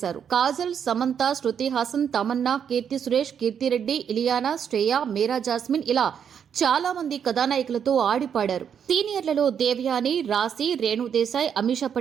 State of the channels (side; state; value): left; quieter; 8.0 dB